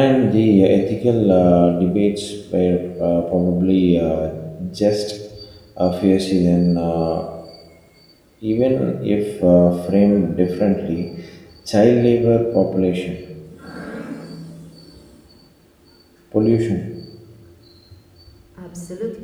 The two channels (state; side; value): identical; both; correlation 1.00